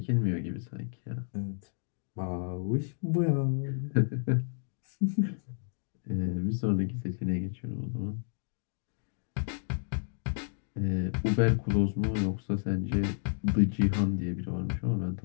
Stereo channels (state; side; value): silent; right; digital silence